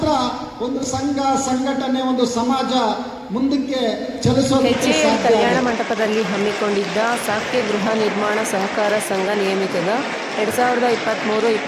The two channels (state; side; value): identical; both; correlation 1.00